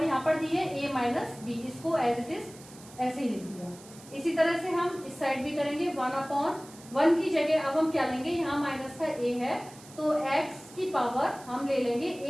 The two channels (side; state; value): right; noise; hiss, 20 dB below the sound